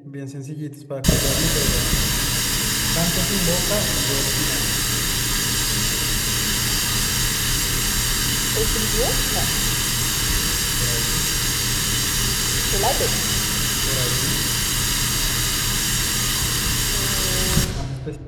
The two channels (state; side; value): identical; both; correlation 1.00